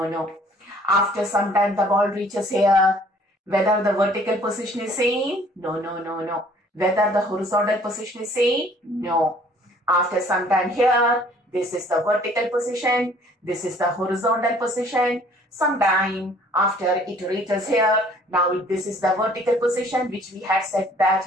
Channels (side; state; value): both; normal; correlation 0.56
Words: After some time, the ball reaches here. Whether the vertical position is same? No. Whether the horizontal position is same? No. After some time here, this is the vertical position. This is the horizontal position. Sometime after it reaches here, now this is the vertical position which we had said that